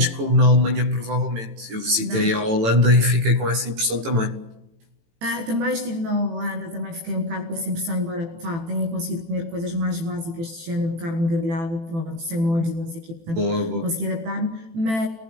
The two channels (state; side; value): late; left; 18 ms